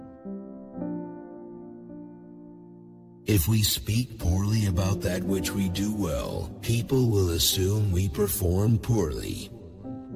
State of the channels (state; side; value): identical; both; correlation 1.00